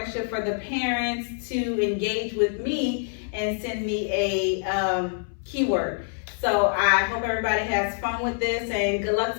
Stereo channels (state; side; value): silent; right; 61 dB below the other